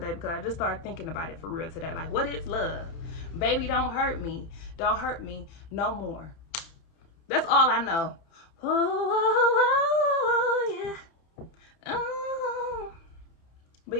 because I just started thinking about it for real today. Like, what is love? Baby, don't hurt me. Don't hurt me no more. That's all I know. Oh, yeah. Oh. But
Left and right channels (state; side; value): late; right; 30 ms